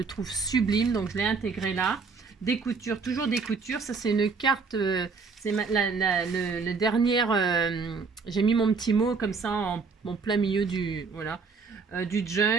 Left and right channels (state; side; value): quieter; left; 4.9 dB